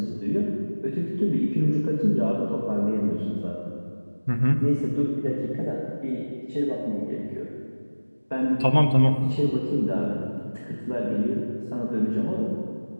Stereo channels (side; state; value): both; inverted; correlation -1.00